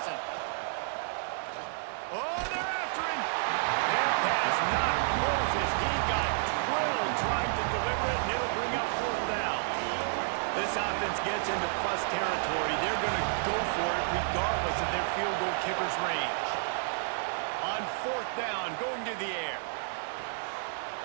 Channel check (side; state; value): left; silent; 57 dB below the other